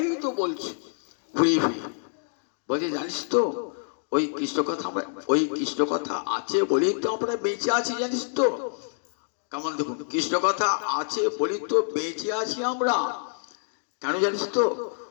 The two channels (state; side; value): silent; right; 60 dB below the other